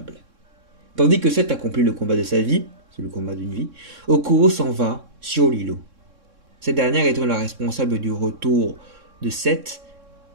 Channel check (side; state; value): left; late; 3.6 ms